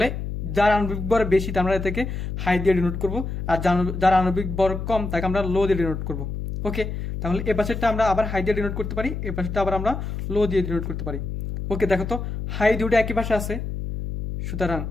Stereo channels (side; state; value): left; noise; hum, 4 dB below the sound